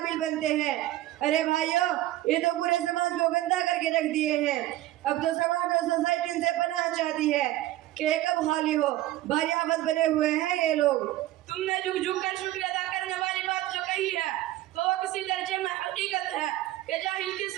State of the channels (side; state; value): left; quieter; 15.4 dB